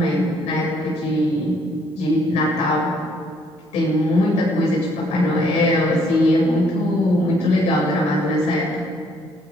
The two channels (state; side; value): normal; both; correlation 0.66